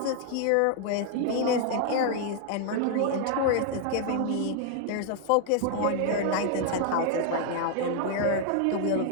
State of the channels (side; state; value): both; different; correlation 0.00